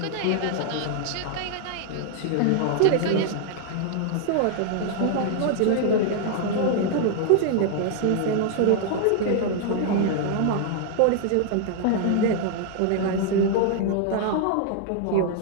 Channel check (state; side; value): different; both; correlation 0.00